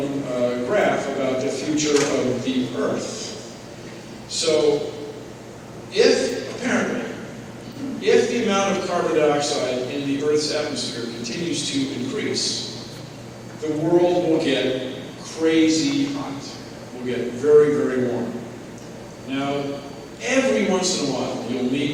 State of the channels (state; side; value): identical; both; correlation 1.00